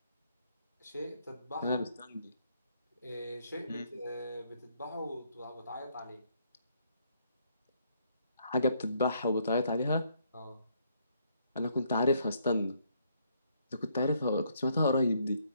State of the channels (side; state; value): both; inverted; correlation -0.70